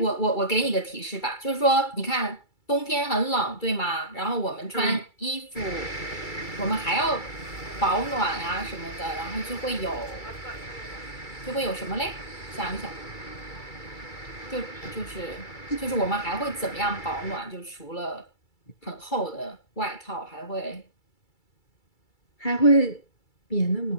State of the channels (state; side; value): late; right; 2.3 ms